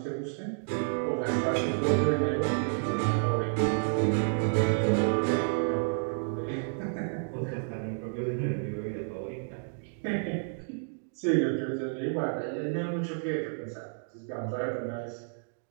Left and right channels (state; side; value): silent; left; digital silence